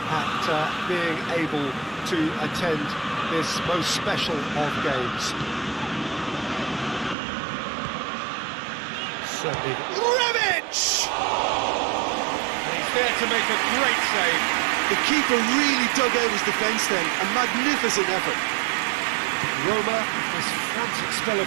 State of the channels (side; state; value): left; drops out; at 7.2 s